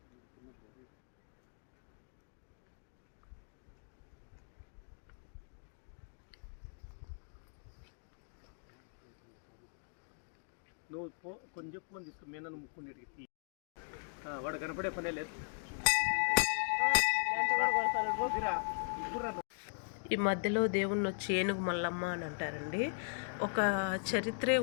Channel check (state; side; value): silent; right; digital silence